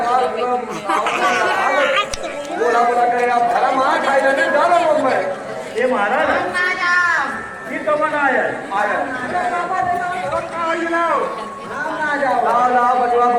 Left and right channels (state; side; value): identical; both; correlation 1.00